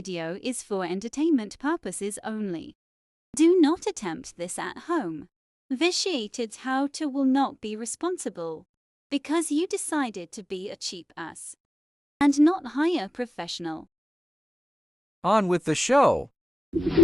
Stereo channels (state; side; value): normal; both; correlation 0.96